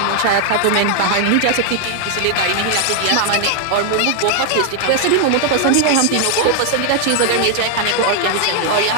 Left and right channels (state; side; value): different; both; correlation 0.00